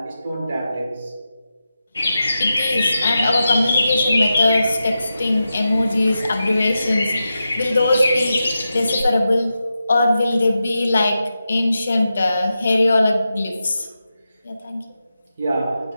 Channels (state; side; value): inverted; both; correlation -0.90